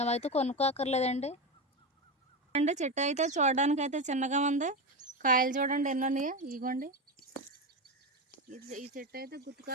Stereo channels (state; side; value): normal; both; correlation 0.16